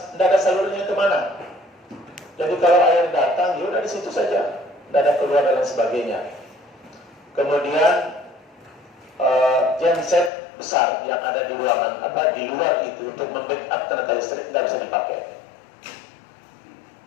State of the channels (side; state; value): right; drops out; at 10.3 s